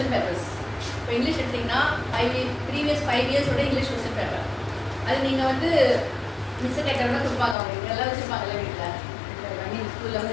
பேப்பர்ஸ் இப்போ இங்கிலீஷ் எடுத்திங்கன்னா ப்ரீவியஸ் 5 இயர்ஸோட இங்கிலீஷ் கொஸ்டின் பேப்பர் அது நீங்கள் வந்து மிஸ் கேட்கறதா கொடுப்பாங்க. அவங்க எல்லாம் வச்சுருப்பாங்கல்ல வீட்டில் நீங்கள் ஸ்கூலில்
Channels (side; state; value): right; drops out; at 7.6 s